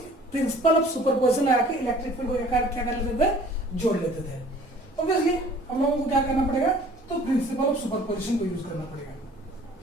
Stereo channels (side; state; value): both; normal; correlation 0.51